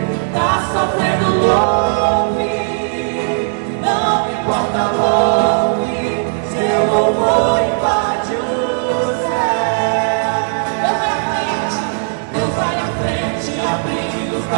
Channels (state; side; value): silent; left; digital silence